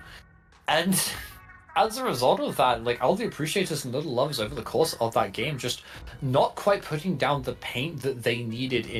And as a result of that, like Aldi Appreciators and Little Loves over the course of that game just not quite putting down the paint that they needed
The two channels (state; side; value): identical; both; correlation 1.00